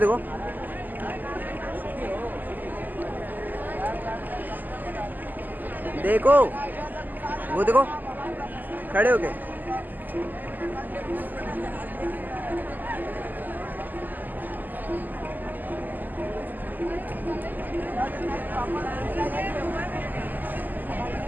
देखो वो देखो खड़े हो गए।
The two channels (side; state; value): left; late; 0.086 ms